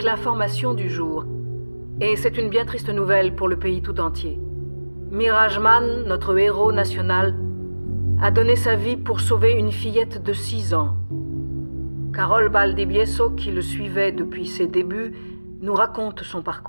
l'information du jour. Et c'est une bien triste nouvelle pour le pays tout entier. Mirajman, notre héros national, a donné sa vie pour sauver une fillette de 6 ans. Carol Valdivieso, qui le suivait depuis ses débuts, nous raconte son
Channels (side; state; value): both; inverted; correlation -1.00